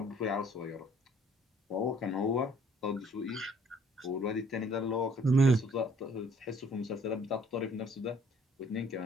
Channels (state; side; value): normal; both; correlation 0.60